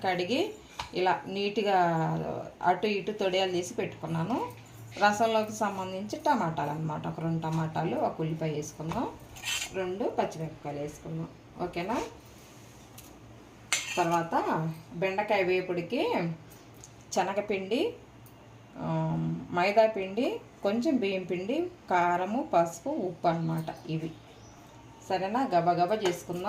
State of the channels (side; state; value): both; identical; correlation 1.00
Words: కడిగి ఇలా నీట్గా అటు ఇటు తొడియాలు తీసి పెట్టుకున్నాను. రసంలోకి సంబంధించి టమాటాలు అనమాట. ఒక 2 టమాటాలు, ఒక ఉల్లిపాయ వేసుకుందాం, 2 పచ్చిమిరపకాయలు వేసుకుందాం. ఓకేనా? తర్వాత బెండకాయ వేపుడికి శనగపిండి, మైదా పిండి, కొంచెం బియ్యం పిండి, కారము, పసుపు, ఉప్పు అన్నమాట ఇవి. సరేనా? గబగబా